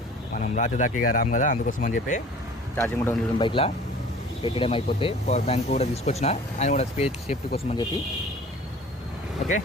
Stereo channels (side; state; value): both; normal; correlation 0.46